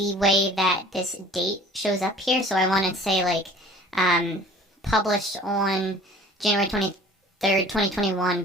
way that this date shows up here. So I want to say like published on January 23rd, 2021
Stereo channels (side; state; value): both; normal; correlation 0.48